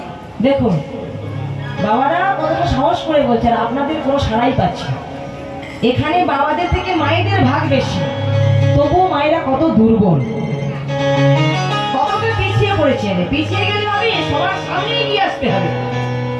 দেখুন বাবারা কতটা সাহস করে বলছে, আর আপনাদের কোনো সাড়াই পাচ্ছে। এখানে বাবাদের থেকে মায়েদের ভাগ বেশি, তবুও মায়েরা কত দুর্বল, কতটা পিছিয়ে পড়েছে। পিছিয়ে গেলে হবে, সবার সামনে এগিয়ে আসতে হবে,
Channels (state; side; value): identical; both; correlation 1.00